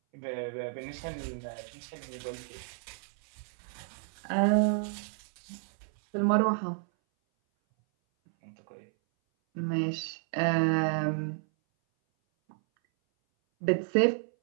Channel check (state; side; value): silent; left; 57 dB below the other